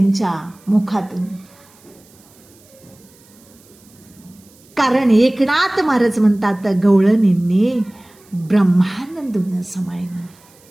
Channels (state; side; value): noise; right; hiss, 28 dB below the sound